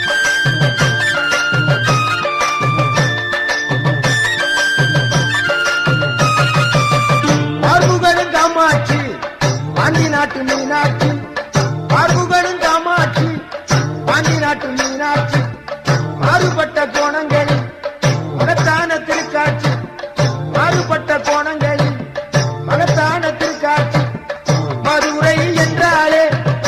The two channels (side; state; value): both; identical; correlation 1.00